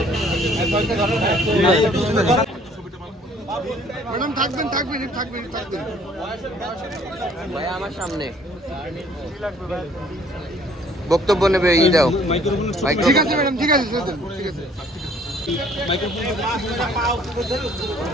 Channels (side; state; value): both; normal; correlation 0.58